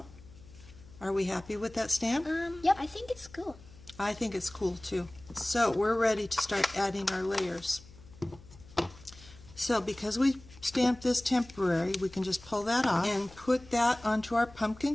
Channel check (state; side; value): noise; left; hum, 21 dB below the sound